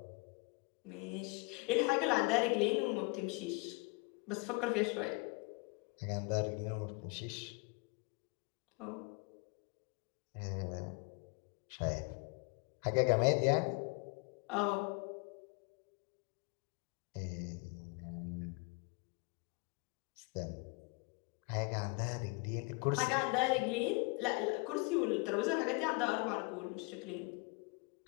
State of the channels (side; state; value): right; quieter; 29.9 dB